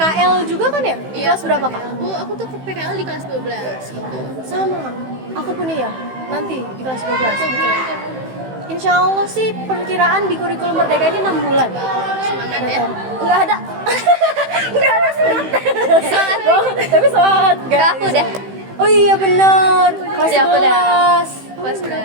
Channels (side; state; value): left; late; 15 ms